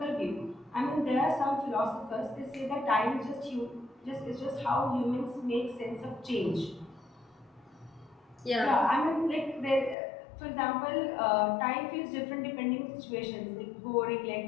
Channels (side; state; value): right; drops out; at 10.0 s